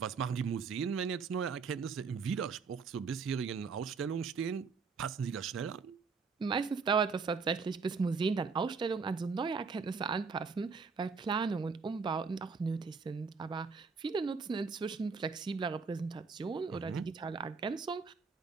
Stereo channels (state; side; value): quieter; left; 5.1 dB